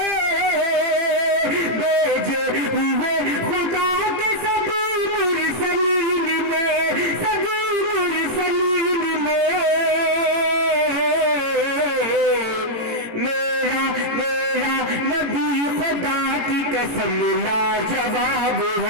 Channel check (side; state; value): left; late; 18 ms